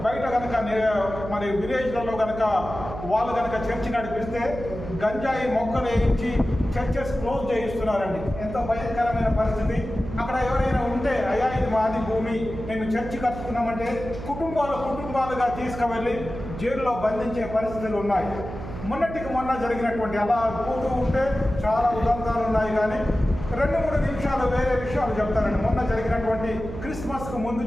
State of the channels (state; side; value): noise; right; hum, 10 dB below the sound